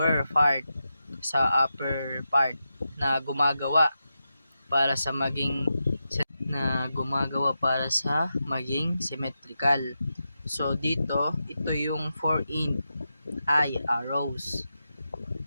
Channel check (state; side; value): inverted; both; correlation -0.89